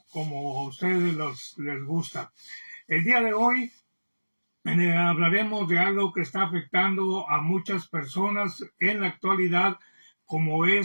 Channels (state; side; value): inverted; both; correlation -1.00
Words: como a ustedes les gusta. El día de hoy hablaremos de algo que está afectando a muchas personas en la actualidad, como